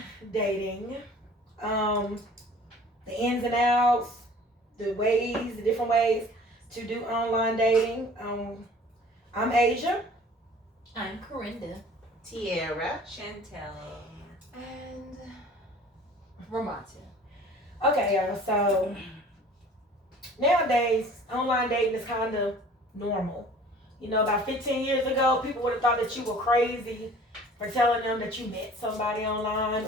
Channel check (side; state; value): both; normal; correlation 0.48